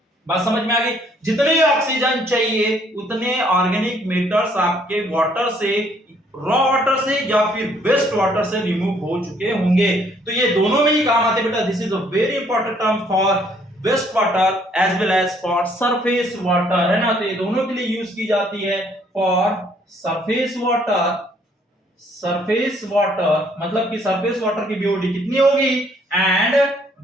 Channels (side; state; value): both; normal; correlation 0.64